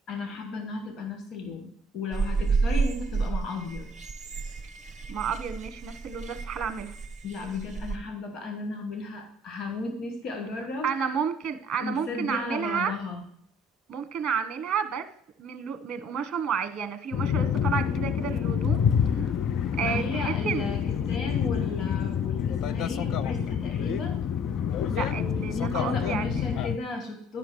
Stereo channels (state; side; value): normal; both; correlation 0.56